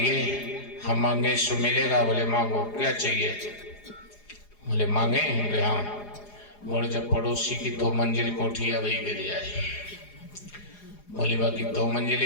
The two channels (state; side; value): late; right; 4.9 ms